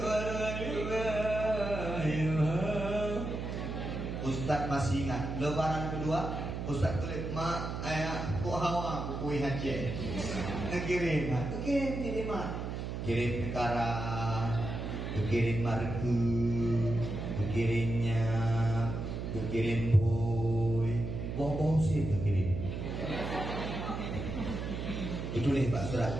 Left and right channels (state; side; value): noise; right; hum, 5 dB below the sound